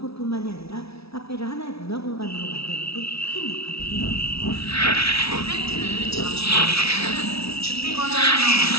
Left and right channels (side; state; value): right; late; 0.77 ms